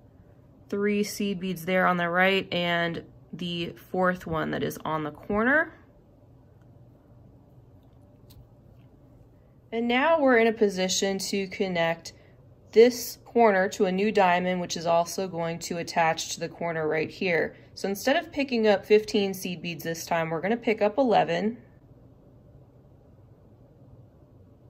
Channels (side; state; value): both; identical; correlation 1.00